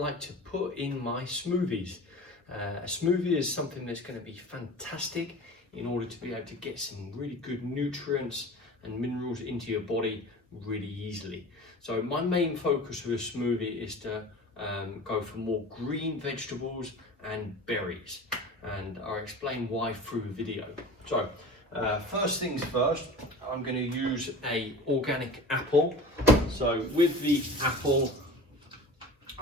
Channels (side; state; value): both; normal; correlation 0.37